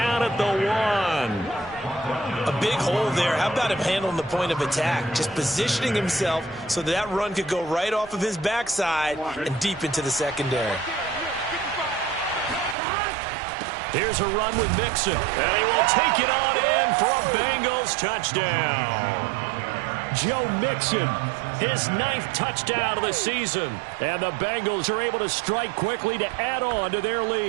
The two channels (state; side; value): drops out; left; at 12.8 s